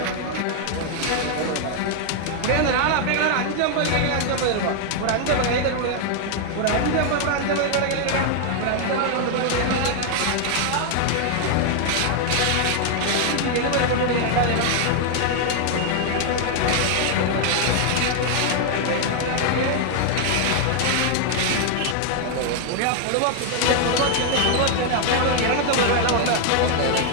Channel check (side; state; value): both; different; correlation 0.00